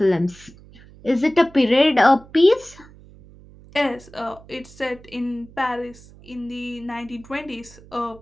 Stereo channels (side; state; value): right; noise; hum, 22 dB below the sound